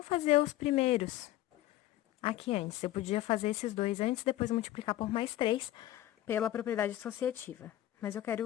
fazer os primeiros aqui antes. Eu podia fazer esses dois antes, depois multiplicar por mais 3 pela propriedade associativa. Mas eu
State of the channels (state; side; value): quieter; right; 14.3 dB